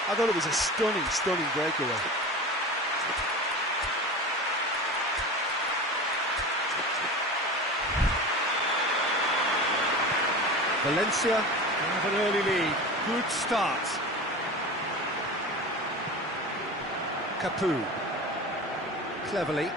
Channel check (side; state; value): both; normal; correlation 0.31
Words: I thought it was a stunning, stunning breakaway. Valencia have an early lead. Good start. Capu. Cleverly.